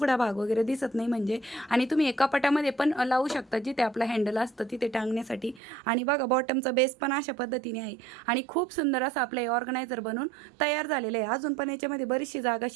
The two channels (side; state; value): left; drops out; at 5.6 s